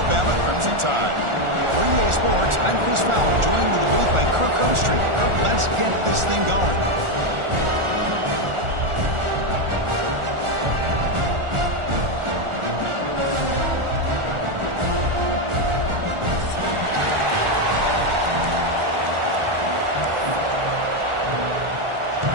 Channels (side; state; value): left; late; 1.4 ms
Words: Crimson Tide. For EA Sports, I'm Chris Fowler, joined in the booth by Kirk Vinostream. Kirk, let's get this thing going.